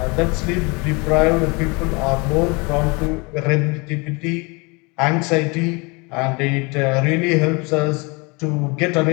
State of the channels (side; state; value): right; quieter; 28.3 dB